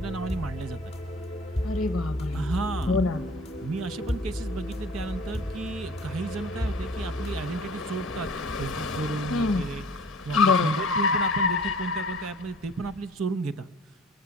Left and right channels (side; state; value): both; normal; correlation 0.46